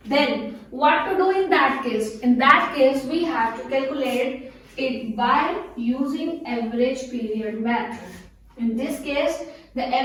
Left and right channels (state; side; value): identical; both; correlation 1.00